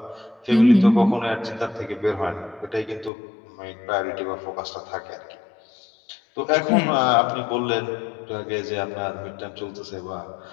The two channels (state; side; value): drops out; right; at 3.1 s